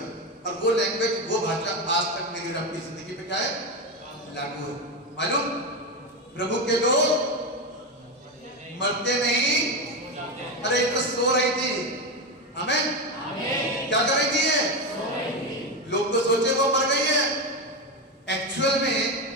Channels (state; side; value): normal; both; correlation 0.14